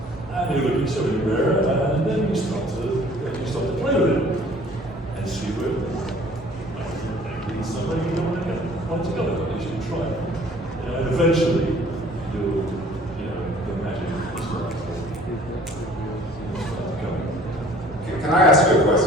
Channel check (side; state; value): both; normal; correlation 0.53